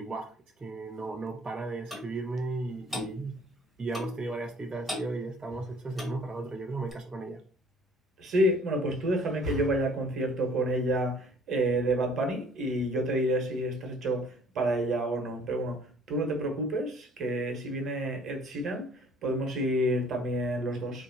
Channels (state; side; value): normal; both; correlation 0.55